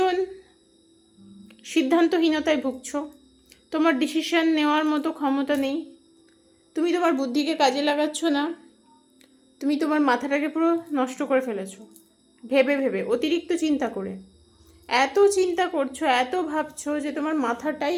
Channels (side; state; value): both; identical; correlation 1.00